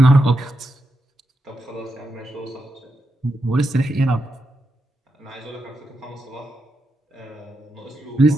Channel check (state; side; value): normal; both; correlation 0.85